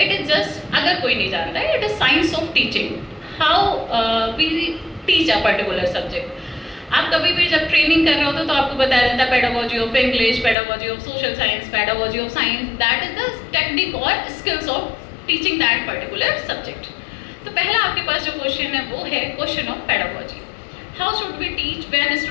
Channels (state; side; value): drops out; right; at 10.6 s